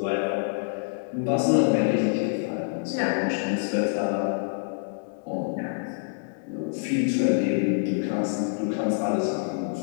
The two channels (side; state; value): right; silent; digital silence